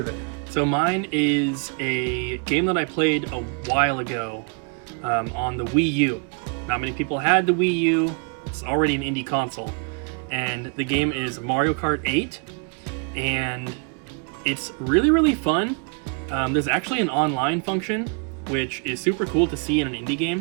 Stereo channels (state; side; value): quieter; left; 38.8 dB